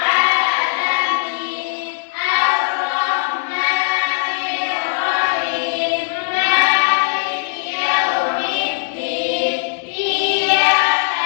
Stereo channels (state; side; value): silent; right; 67 dB below the other